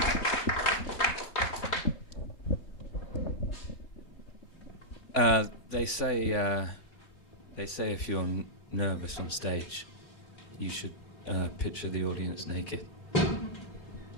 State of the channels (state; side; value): late; right; 3.5 ms